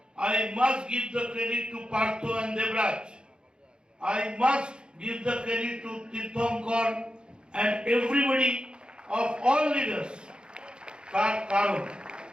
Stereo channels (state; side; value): late; left; 0.051 ms